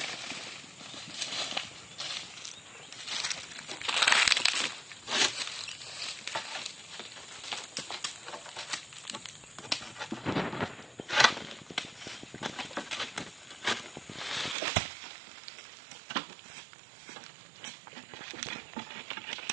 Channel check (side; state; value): left; drops out; at 14.6 s